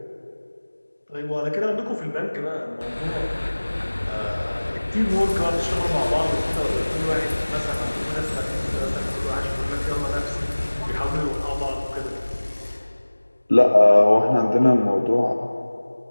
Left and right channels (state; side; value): inverted; both; correlation -1.00